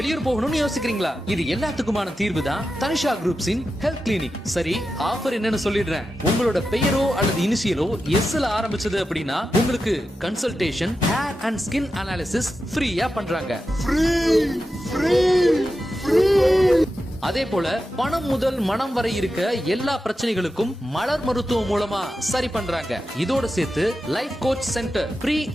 போகணும்னு யோசிக்கிறீங்களா? இது எல்லாத்துக்குமான தீர்வு தான் தனிஷா குரூப்ஸின் ஹெல்த் கிளினிக். சரி, ஆஃபர் என்னன்னு சொல்லிடுறேன். உங்களோட பெயரோ அல்லது இனிஷியலோ எஸ்ல ஆரம்பிச்சது அப்படின்னா உங்களுக்கு consultation, hair and skin analysis ஃப்ரீயா பண்றாங்க. அதே போல பணம் முதல் மனம் வரை இருக்க எல்லா பிரச்சனைகளுக்கும் மலர் மருத்துவம் மூலமா சரி பண்றாங்க. இதோட சேர்த்து life coach centre, pre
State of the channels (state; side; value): normal; both; correlation 0.91